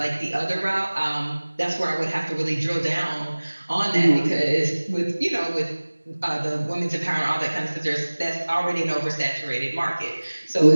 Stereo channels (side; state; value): both; inverted; correlation -1.00